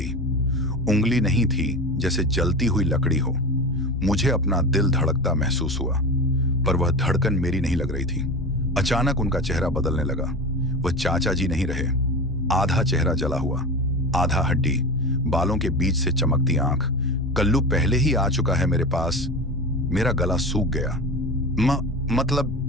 उंगली नहीं थी, जैसे जलती हुई लकड़ी हो। मुझे अपना दिल धड़कता महसूस हुआ, पर वह धड़कन मेरी नहीं लग रही थी। अचानक उनका चेहरा बदलने लगा। वह चाचा जी नहीं रहे। आधा चेहरा जला हुआ, आधा हड्डी, बालों के बीच से चमकती आंख। कल्लू पहले ही आ चुका है मेरे पास। मेरा गला सूख गया।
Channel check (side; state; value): both; normal; correlation 0.27